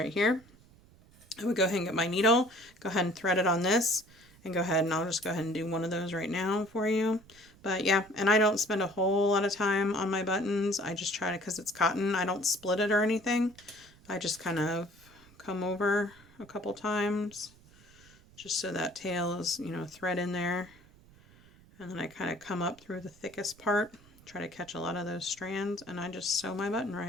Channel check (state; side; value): noise; right; rumble, 26 dB below the sound